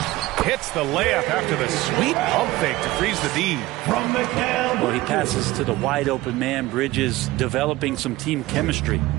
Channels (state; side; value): quieter; left; 18.3 dB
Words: Hits the layup after the sweet pump fake to freeze the D. Well, he passes to the wide open man. Bridges developing some team chemistry.